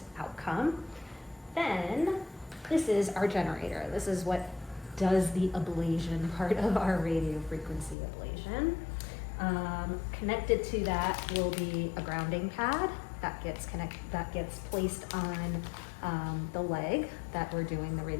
outcome. Then, this is our generator. This is what does the ablation part of our radiofrequency ablation. Connected to that will be a grounding pad that gets placed on the leg that we're doing the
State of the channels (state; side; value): drops out; right; at 8.0 s